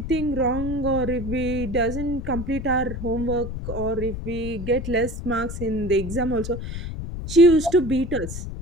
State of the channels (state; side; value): noise; left; rumble, 7 dB below the sound